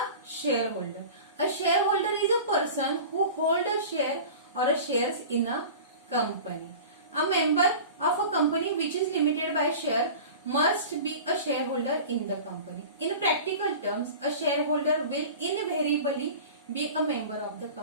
shareholder. A shareholder is a person who holds a share or a shares in a company. A member of a company which is limited by share must be a shareholder in the company. In practical terms, a shareholder will invariably be a member of the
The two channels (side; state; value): both; inverted; correlation -0.36